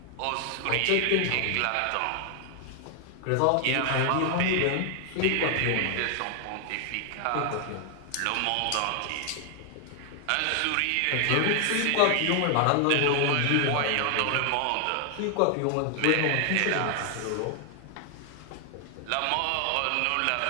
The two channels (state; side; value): different; both; correlation 0.00